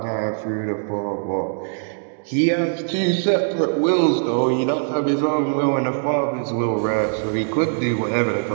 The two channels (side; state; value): left; silent; digital silence